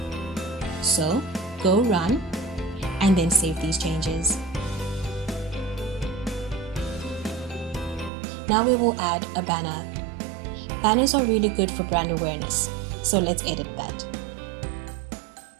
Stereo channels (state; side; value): drops out; left; at 8.1 s